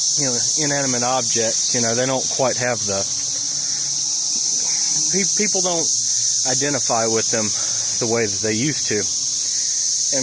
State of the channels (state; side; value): identical; both; correlation 1.00